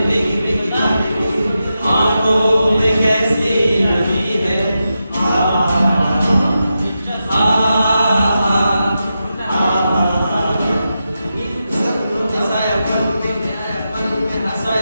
भीगी भीगी आज भीगी आंखों में कैसी नमी है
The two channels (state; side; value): inverted; both; correlation -0.89